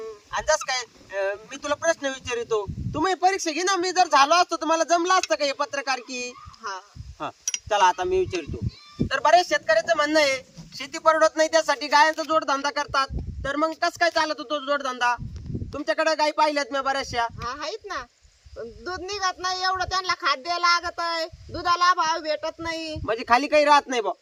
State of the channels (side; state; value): both; identical; correlation 1.00